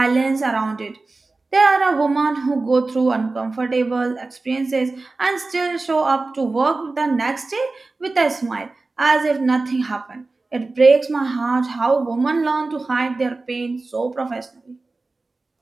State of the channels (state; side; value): quieter; left; 3.5 dB